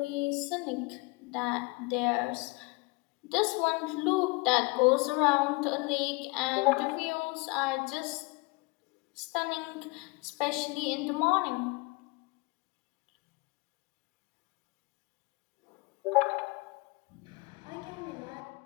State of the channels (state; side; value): quieter; right; 26.6 dB